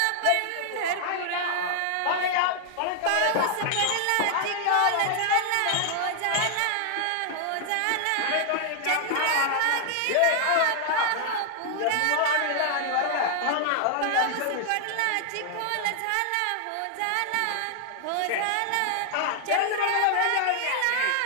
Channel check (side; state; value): both; different; correlation 0.00